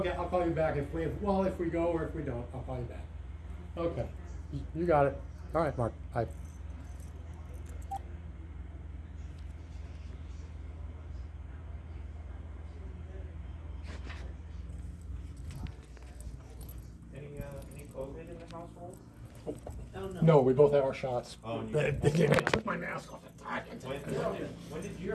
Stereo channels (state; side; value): identical; both; correlation 1.00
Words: I'll call you back if we go or if we don't, I'll call you back. Okay, you got it. All right, Mark. Bye. Any COVID in the household? Oh, no. No, we both have our shots. Oh, and I took my mask off. When did you